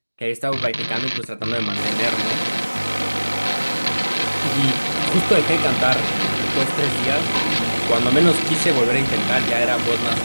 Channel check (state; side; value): inverted; both; correlation -1.00